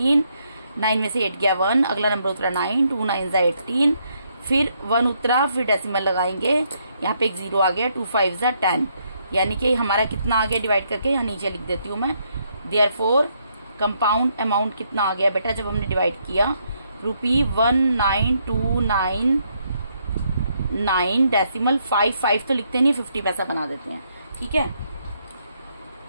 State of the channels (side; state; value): both; inverted; correlation -0.74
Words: 9 में से 8 गया 1, अगला नंबर उतरा 9, 2 9 18, फिर 1 उतरा, फिर डेसिमल लगाएंगे, यहाँ पे एक 0 आ गया, 2 5 10, यानी कि हमारा कितना आ गया डिवाइड करके, यहाँ नीचे लिख देती हूँ मैं। देयरफॉर कंपाउंड अमाउंट कितना आ गया बेटा जब हमने डिवाइड किया, ₹19,299 डेसिमल 5 तो लिखते नहीं, 50 पैसा बना देते हैं, ठीक है।